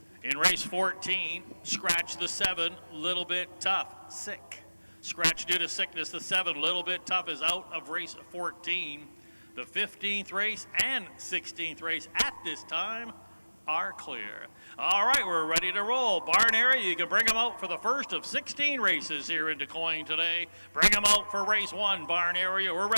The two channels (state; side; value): inverted; both; correlation -1.00